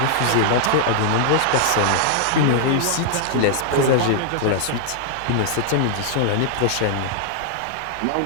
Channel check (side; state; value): both; different; correlation -0.01